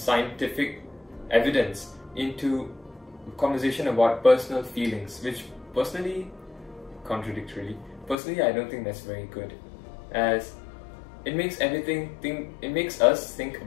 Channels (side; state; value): right; drops out; at 8.2 s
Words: evidence into conversation about personal feelings, which personally, contradictorily, I don't think that's very good, as it makes us think